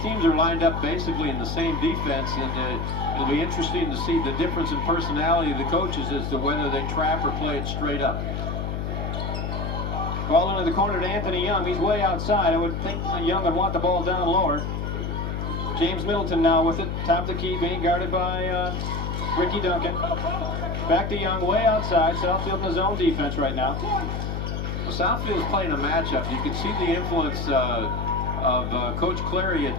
teams are lined up basically in the same defense, and it'll be interesting to see the difference in personality of the coaches as to whether they trap or play it straight up. Ball into the corner to Anthony Young. He's way outside. I would think Young would want the ball down lower. James Middleton now with it. Top of the key, being guarded by Ricky Duncan. Back to Young, way outside. Southfield in his own defense right now. Well, Southfield is playing a matchup. You can see the influence of Coach Clary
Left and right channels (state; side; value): noise; left; hum, 3 dB below the sound